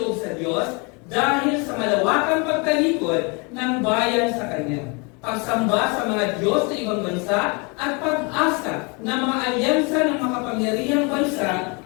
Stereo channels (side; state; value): right; quieter; 31.3 dB